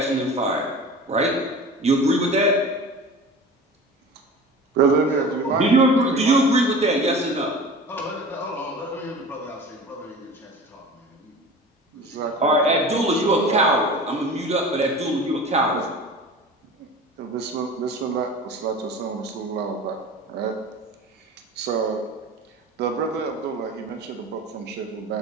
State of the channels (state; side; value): normal; both; correlation 0.37